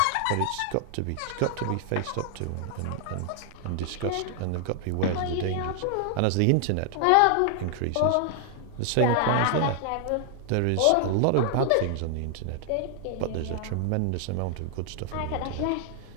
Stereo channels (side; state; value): both; different; correlation 0.00